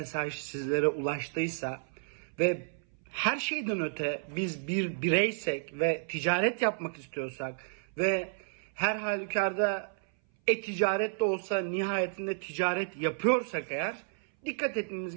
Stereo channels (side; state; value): left; silent; 57 dB below the other